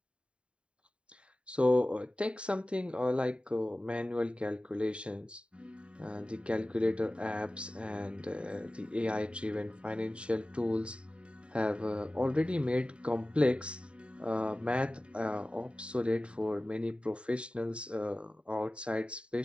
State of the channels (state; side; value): late; left; 0.057 ms